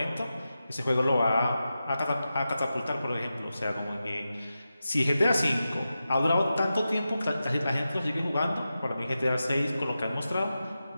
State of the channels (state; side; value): inverted; both; correlation -0.91